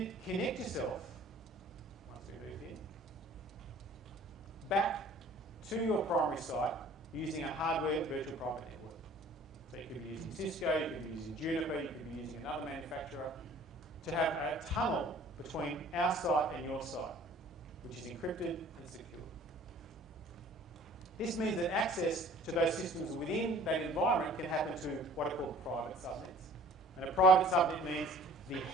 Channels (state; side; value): normal; both; correlation 0.50